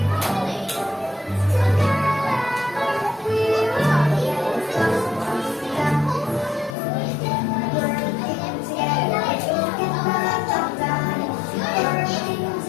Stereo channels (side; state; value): right; drops out; at 6.8 s